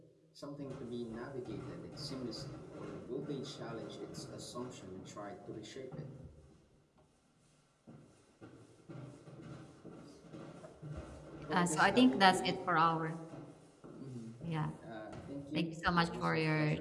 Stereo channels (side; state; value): both; identical; correlation 1.00